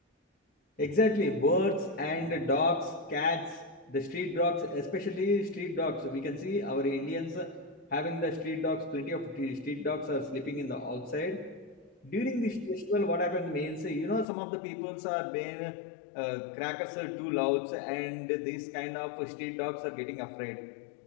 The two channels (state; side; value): drops out; right; at 14.2 s